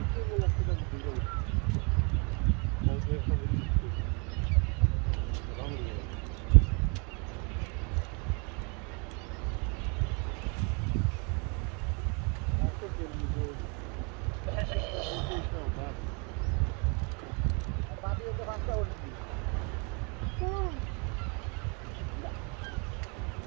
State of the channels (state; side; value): quieter; left; 33.6 dB